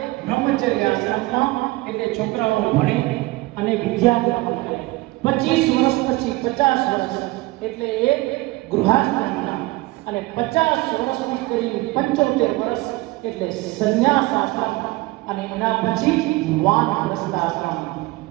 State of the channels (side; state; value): left; quieter; 20.5 dB